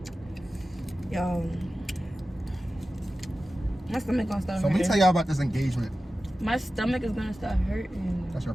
Yo, my stomach gonna start So let me hurting. tell y'all about this engagement. My stomach is gonna start hurting. That's your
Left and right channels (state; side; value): normal; both; correlation 0.94